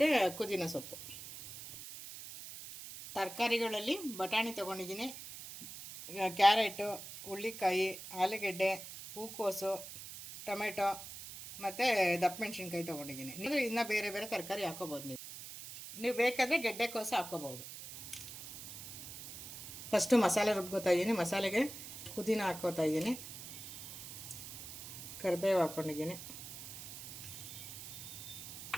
ಪುದೀನ ಸೊಪ್ಪು. ತರಕಾರಿಗಳಲ್ಲಿ ಬಟಾಣಿ ತೊಗೊಂಡಿದ್ದೀನಿ, ಕ್ಯಾರೆಟು, ಹುಳ್ಳಿಕಾಯಿ, ಆಲೂಗೆಡ್ಡೆ, ಹೂಕೋಸು, ಟೊಮೆಟೊ ಮತ್ತು ದಪ್ಪ ಮೆಣಸಿನ್ಕಾಯಿ ತೊಗೊಂಡಿದ್ದೀನಿ. ನೀವು ಇನ್ನೂ ಬೇರೆ ಬೇರೆ ತರಕಾರಿ ಹಾಕ್ಕೋಬೋದು. ನೀವು ಬೇಕಾದರೆ ಗೆಡ್ಡೆಕೋಸು ಹಾಕ್ಕೋಬೋದು. ಫಸ್ಟು ಮಸಾಲೆ ರುಬ್ಕೋತಾ ಇದ್ದೀನಿ. ಮಸಾಲೆಗೆ ಪುದೀನ ಹಾಕ್ಕೋತಾ ಇದ್ದೀನಿ, ಕರಿಬೇವು ಹಾಕ್ಕೊಂಡಿದ್ದೀನಿ,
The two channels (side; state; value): right; noise; hiss, 11 dB below the sound